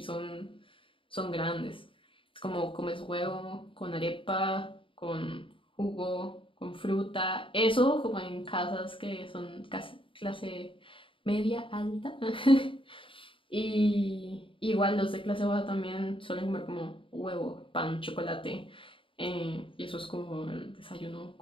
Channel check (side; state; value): right; late; 0.25 ms